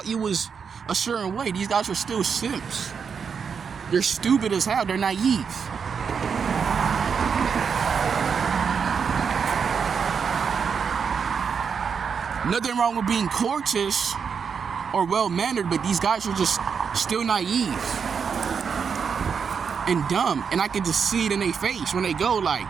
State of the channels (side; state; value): left; quieter; 6.4 dB